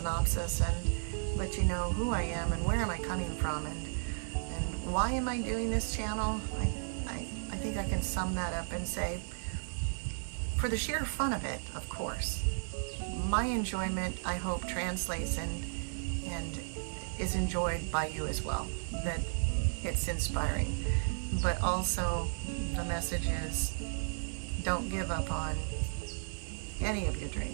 and let you know who I am and where am I coming from, and why am I doing this channel. I think I can sum that up and say, for the sheer fun of it, of course. My enjoyment, I hope, translates and is enjoyed by you as well, that it's inspiring. But also the message is, don't give up on any of your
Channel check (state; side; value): silent; left; 55 dB below the other